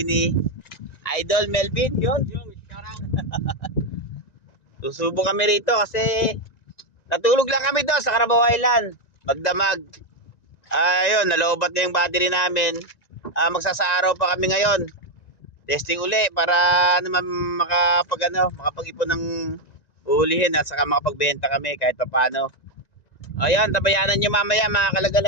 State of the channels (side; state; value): right; late; 1.9 ms